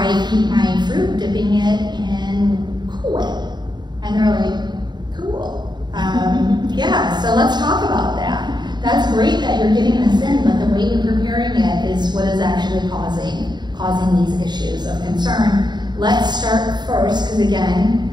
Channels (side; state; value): left; late; 0.21 ms